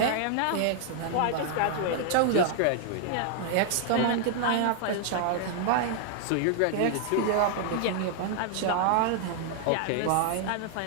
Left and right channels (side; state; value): both; different; correlation 0.00